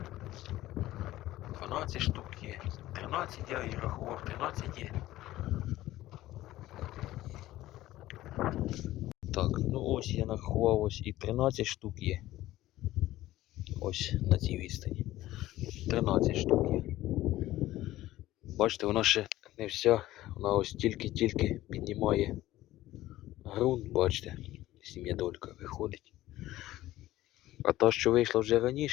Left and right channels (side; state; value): right; quieter; 15.6 dB